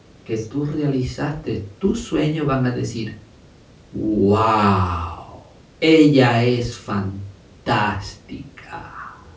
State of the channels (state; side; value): identical; both; correlation 1.00